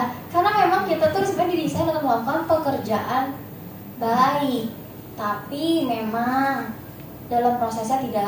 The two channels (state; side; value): identical; both; correlation 1.00